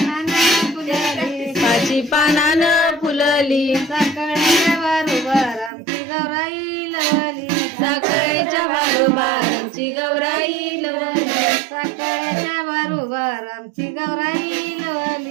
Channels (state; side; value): drops out; left; at 5.7 s